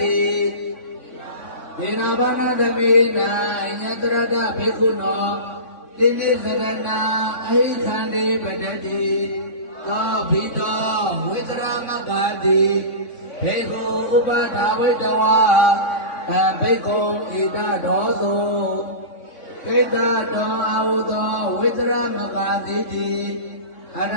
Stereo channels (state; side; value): late; right; 3.5 ms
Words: ိဒေနာဘာနာသမေနာညတရတဘေကုနောတိနိသရဏအဟိခန္တိပတတိသောဘိတောဝိတရမဂ္ဂတိဘေကုဥပဒါဝိတဝါဘေကုဣဒဒောသောဣဒတောအာဟုသောဝိတရမဂ္ဂတိအရ